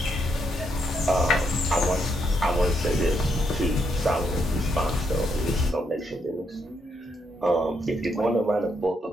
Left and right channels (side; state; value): both; normal; correlation 0.78